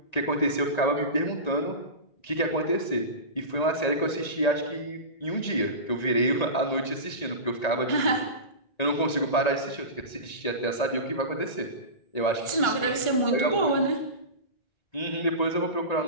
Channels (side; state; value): right; late; 1.9 ms